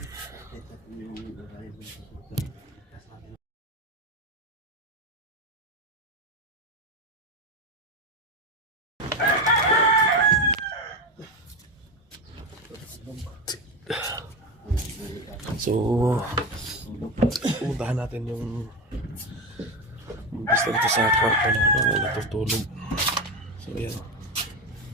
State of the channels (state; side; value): normal; both; correlation 0.17